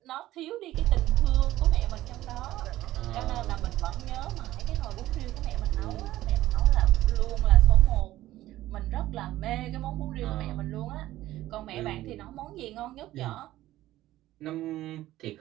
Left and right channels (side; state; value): left; quieter; 15.2 dB